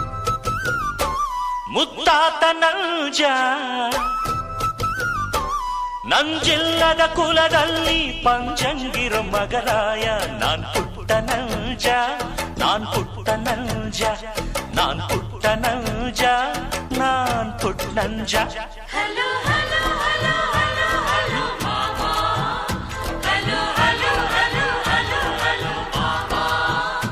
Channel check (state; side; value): identical; both; correlation 1.00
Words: ಮುತ್ತಾತ ನಂಜ ನಂಜಿಲ್ಲದ ಕುಲದಲ್ಲಿ ಪಂಚಂಗಿರ ಮಗರಾಯ ನಾನ್ ಪುಟ್ಟ ನಂಜ ನಾನ್ ಪುಟ್ಟ ನಂಜ ನಾನ್ ಪುಟ್ಟ ನಂಜ ನಾನ್ Putta Nanja hello hello hello hello hello ಮಾಮಾ hello hello hello hello hello ಮಾಮಾ